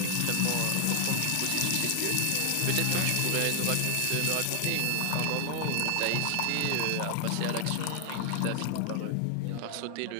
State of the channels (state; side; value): different; both; correlation 0.00